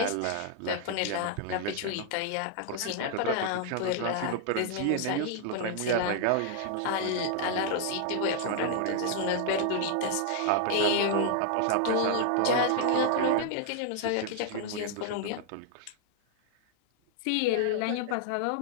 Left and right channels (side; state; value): both; different; correlation -0.01